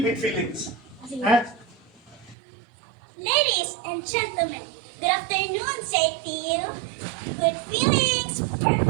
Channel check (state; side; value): drops out; left; at 2.4 s